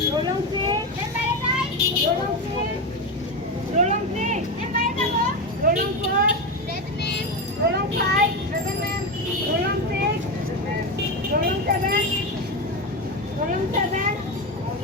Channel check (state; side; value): normal; both; correlation 0.15